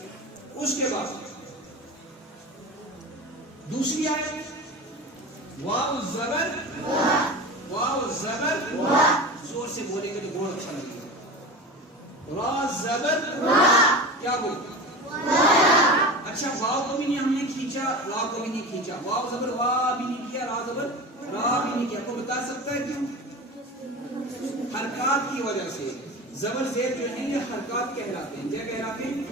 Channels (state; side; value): normal; both; correlation 0.30